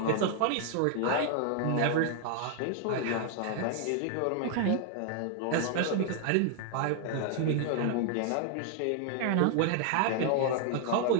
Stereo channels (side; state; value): both; different; correlation 0.00